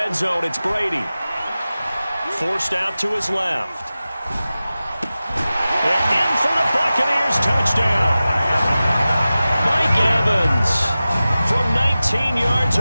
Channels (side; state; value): both; inverted; correlation -0.95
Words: zone, it's Brady. Forced out to his left. And in for the Buccaneers, touchdown. Mike Evans from 19 yards